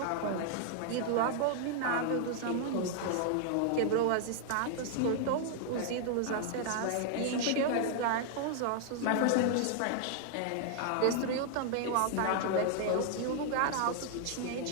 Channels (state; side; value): different; both; correlation 0.00